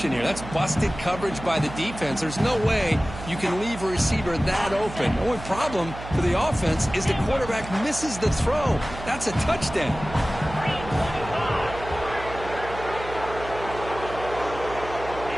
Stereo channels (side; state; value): right; noise; hum, 12 dB below the sound